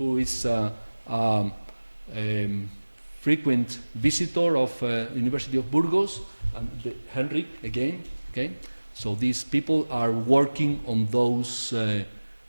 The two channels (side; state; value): both; inverted; correlation -1.00